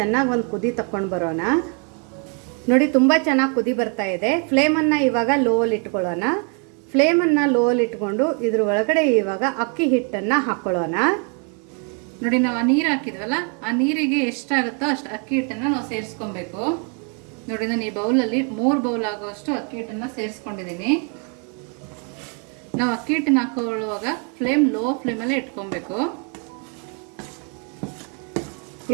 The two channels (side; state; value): left; quieter; 38.3 dB